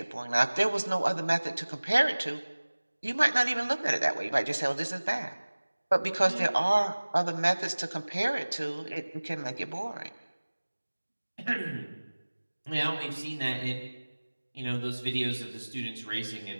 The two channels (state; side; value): inverted; both; correlation -1.00